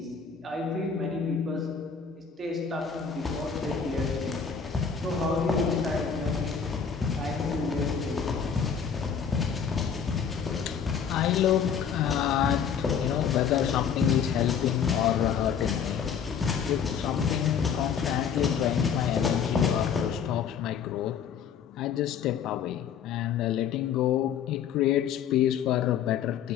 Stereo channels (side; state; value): right; quieter; 7.2 dB